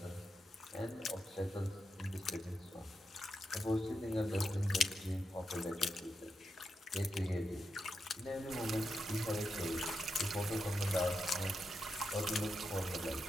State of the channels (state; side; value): normal; both; correlation 0.86